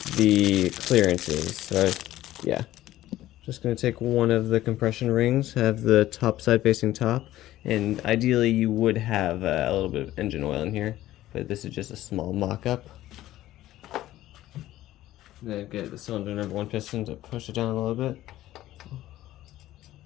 the clearances. So yeah, just going to take one of the compression rings, have the top side facing top, and ideally you would have a little bit of engine oil in here, but this is just a small mock-up. Then get the cylinder number 1 piston to push it down a little bit.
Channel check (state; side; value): quieter; right; 14.7 dB